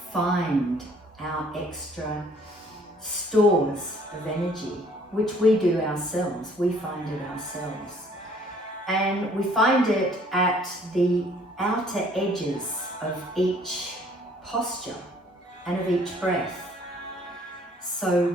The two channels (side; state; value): both; normal; correlation 0.59